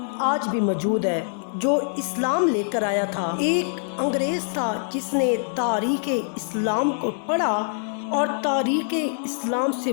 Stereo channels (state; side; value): silent; right; 60 dB below the other